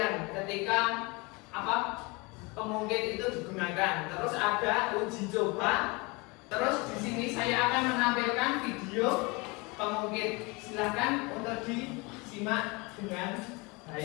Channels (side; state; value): right; quieter; 27.0 dB